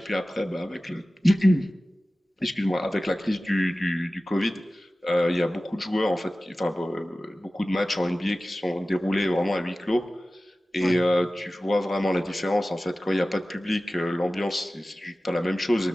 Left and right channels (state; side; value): normal; both; correlation 0.96